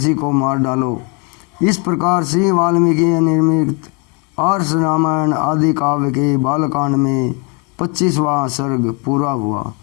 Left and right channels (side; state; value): right; quieter; 31.2 dB